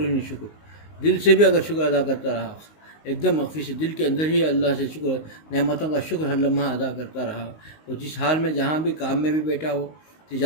نہیں شکر، دل سے بھی اگر شکر ادا کرتا رہا ایک دم مخفی سے دل کے اندر ہی اللہ سے شکر نعمتوں کا شکر ہر لمحہ ادا کرتا رہا، اور جس حال میں جہاں بھی کام میں بھی بیٹھا ہو،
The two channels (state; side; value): late; right; 19 ms